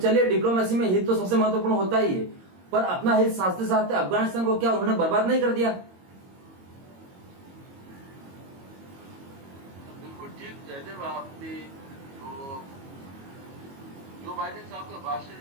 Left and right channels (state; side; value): late; left; 22 ms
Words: डिप्लोमेसी में हित तो सबसे महत्वपूर्ण होता ही है, पर अपना हित साधते साधते अफगानिस्तान को क्या उन्होंने बर्बाद नहीं कर दिया? जयदेव, आपने जो बाइडेन साहब का भाषण